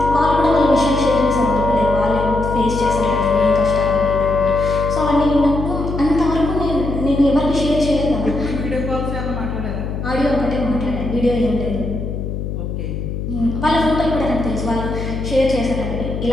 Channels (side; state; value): left; noise; hum, 5 dB below the sound